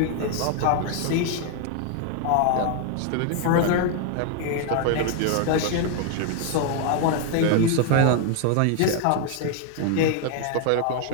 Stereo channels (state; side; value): different; both; correlation 0.00